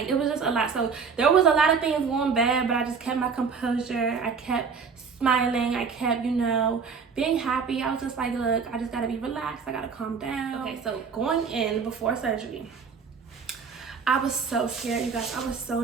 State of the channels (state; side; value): quieter; left; 5.7 dB